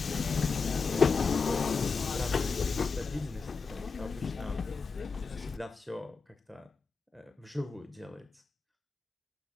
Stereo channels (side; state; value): right; quieter; 4.7 dB